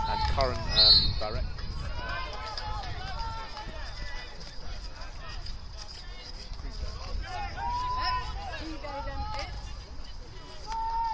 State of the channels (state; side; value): identical; both; correlation 1.00